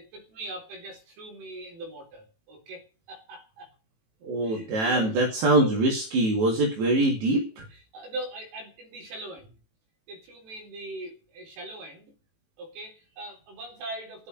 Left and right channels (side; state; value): left; late; 18 ms